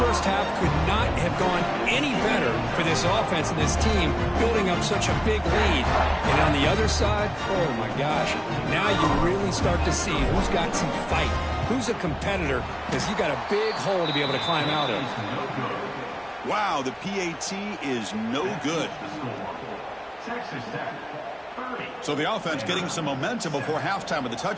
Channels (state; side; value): identical; both; correlation 1.00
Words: half could not have gone any better for this offense and this team, building up such a big lead. And on the other side, oh my gosh, now you really start to see who's got some fight, who's a competitor, because you got a big hole to be able to climb out of. Wow, the PAT is no good. So the offense getting some momentum before halftime with the